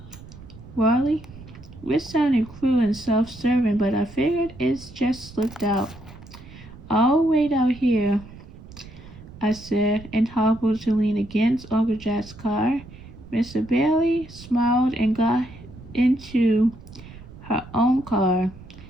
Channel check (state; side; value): noise; right; rumble, 18 dB below the sound